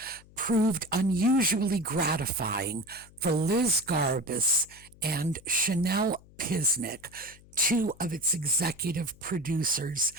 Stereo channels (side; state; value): left; noise; hum, 24 dB below the sound